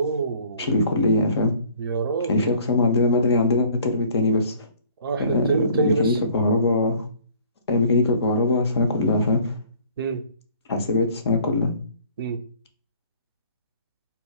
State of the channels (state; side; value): inverted; both; correlation -0.54